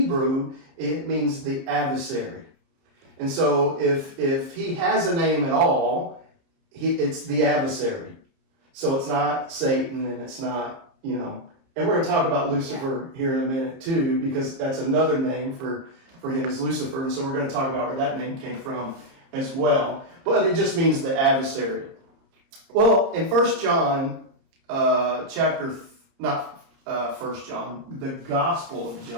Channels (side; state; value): left; late; 30 ms